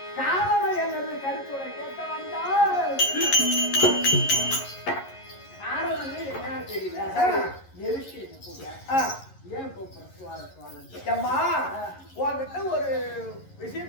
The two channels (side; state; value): right; late; 11 ms